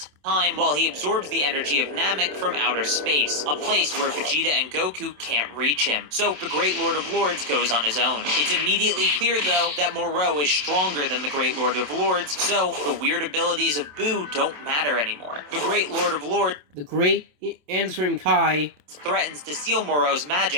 time while he absorbs the energy of Namek from outer space, a place where Vegeta and Goku can't reach him. So the Great Lord of Lords goes on his own. It's immediately clear though that Moro is stronger than the Great Lord of Lords, so the weird abilities of Boo don't matter anymore. The Great Lord of Lords The Great and Supreme Kai. threatens to steal Moro's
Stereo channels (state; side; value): late; left; 27 ms